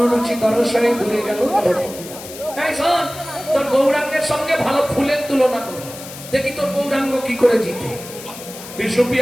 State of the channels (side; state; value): left; noise; hiss, 14 dB below the sound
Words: রুচি দর্শনে দূরে গেল দর্প কিতাব। এই শোন, তোর গৌরাঙ্গের সঙ্গে ভালো ফুলের তুলনা কর, দেখি তোর গৌরাঙ্গ কি করে জিতে।